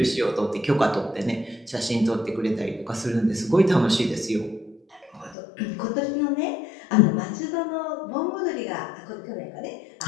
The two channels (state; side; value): drops out; right; at 5.4 s